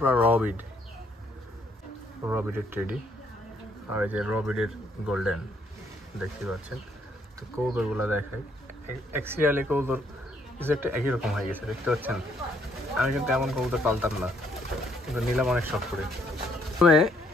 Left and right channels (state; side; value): normal; both; correlation 0.69